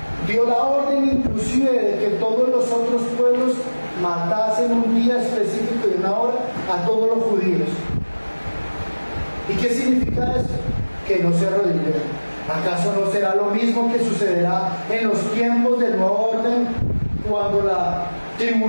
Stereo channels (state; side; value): inverted; both; correlation -1.00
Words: Dio la orden inclusive de que todos los otros pueblos matasen un día específico y una hora a todos los judíos. ¿Y qué significa eso? Que no se arrodillen. ¿Acaso no será lo mismo que sucederá en los tiempos del nuevo orden, cuando la